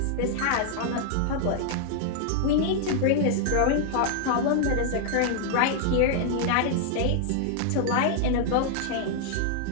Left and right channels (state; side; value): different; both; correlation -0.01